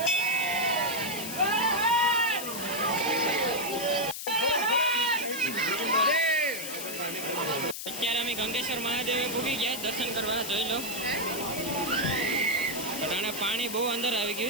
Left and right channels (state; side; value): noise; left; hiss, 7 dB below the sound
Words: અત્યારે અમે ગંગેશ્વર મહાદેવે પૂગી ગયા દર્શન કરવા, જોઈ લો. અટાણે પાણી બહુ અંદર આવી